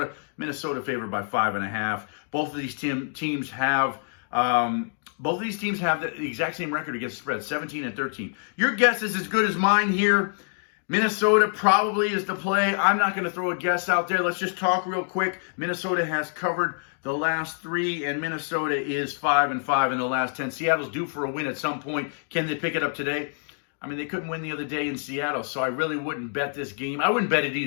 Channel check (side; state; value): right; silent; 61 dB below the other